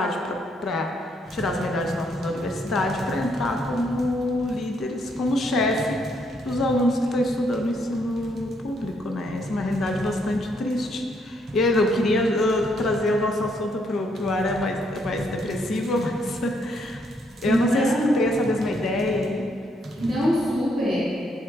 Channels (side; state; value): both; normal; correlation 0.73